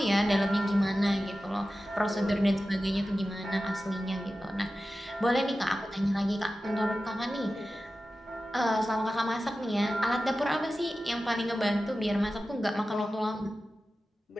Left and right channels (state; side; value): normal; both; correlation 0.94